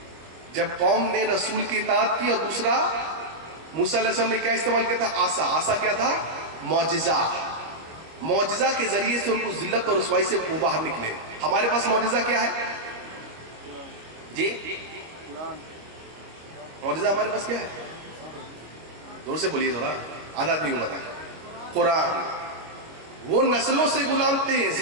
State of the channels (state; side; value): late; left; 25 ms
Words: جب قوم نے رسول کی اطاعت کی، اور دوسرا موسیٰ علیہ السلام نے کیا استعمال کیا تھا؟ عصا۔ عصا کیا تھا؟ معجزہ۔ معجزہ کے ذریعے سے ان کو ذلت اور رسوائی سے وہ باہر نکلے۔ ہمارے پاس معجزہ کیا ہے جی؟ معجزہ ہمارے پاس کیا ہے؟ زور سے بولیے ذرا، آدھا آدمی کو بتا۔ قرآن۔ وہ نسلوں سے غلام تھے،